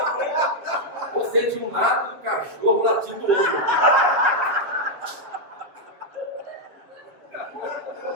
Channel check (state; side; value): late; left; 7.2 ms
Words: Você de um lado e o cachorro latindo do outro.